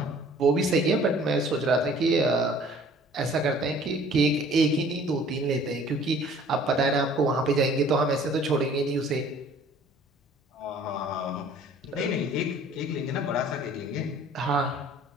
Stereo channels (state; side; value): normal; both; correlation 0.53